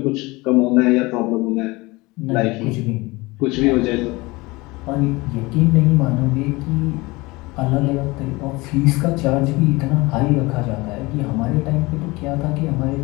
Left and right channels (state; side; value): quieter; right; 22.8 dB